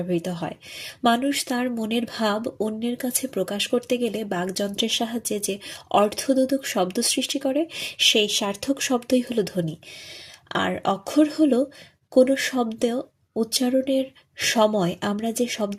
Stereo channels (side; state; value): both; identical; correlation 1.00